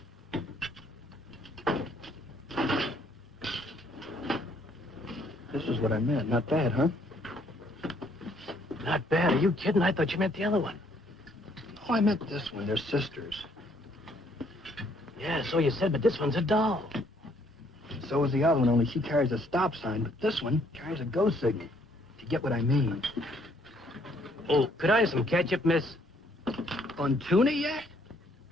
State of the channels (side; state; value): both; normal; correlation 0.66